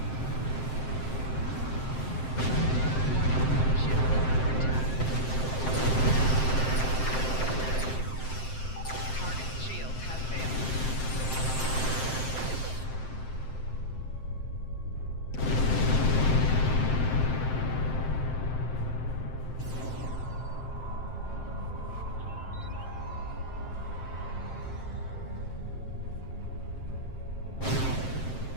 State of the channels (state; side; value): late; right; 7.7 ms